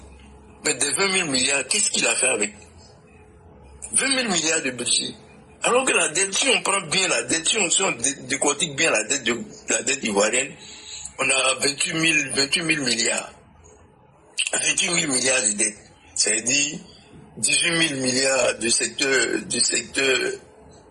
Mais des 20 000 milliards, qu'est-ce qu'il a fait avec? 20 000 milliards de budget. Alors que la dette, si on prend bien la dette, si on décortique bien la dette ivoirienne, on a 28 000 milliards. 28 000 milliards de dettes. C'est-à-dire 18 000 milliards de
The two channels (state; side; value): identical; both; correlation 1.00